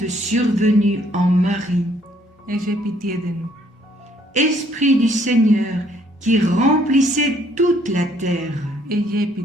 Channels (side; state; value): both; normal; correlation 0.65